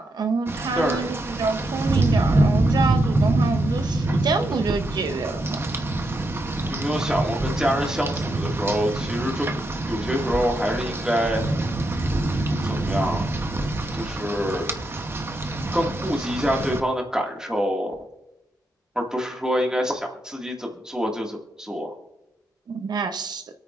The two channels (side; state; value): both; normal; correlation 0.82